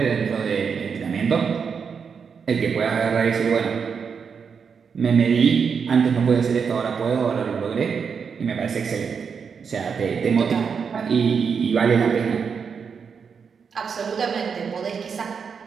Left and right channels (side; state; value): left; quieter; 6.2 dB